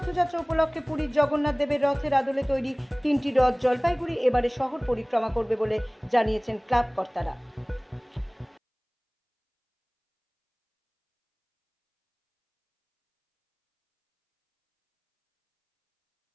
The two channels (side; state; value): both; identical; correlation 1.00